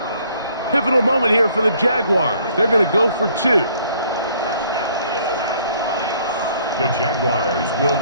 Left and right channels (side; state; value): both; inverted; correlation -0.61